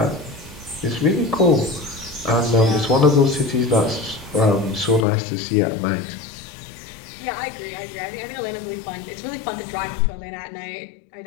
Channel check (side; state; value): right; drops out; at 5.1 s